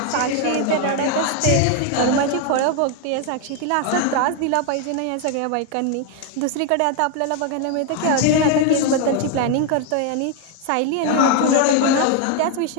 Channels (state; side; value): different; both; correlation 0.01